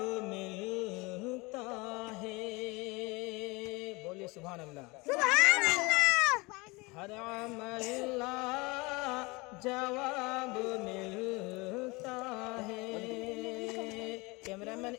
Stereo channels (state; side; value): quieter; right; 25.2 dB